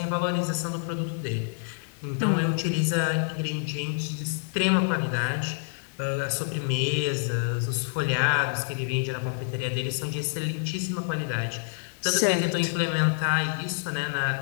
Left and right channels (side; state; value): right; silent; digital silence